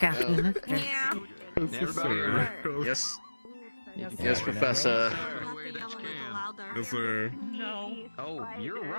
after. Everybody. Yes. Yes, Yes, sir. Professor. Yes, sir. No. Oh, you're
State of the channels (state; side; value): inverted; both; correlation -1.00